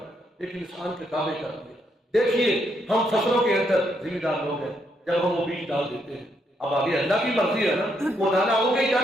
ایک انسان کے تابع کر دیا۔ دیکھیے ہم فصلوں کے اندر ذمہ دار لوگ ہیں، جب ہم وہ بیج ڈال دیتے ہیں، اب آگے اللہ کی مرضی ہے نا، وہ دانا ہوگی یا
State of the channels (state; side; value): normal; both; correlation 0.76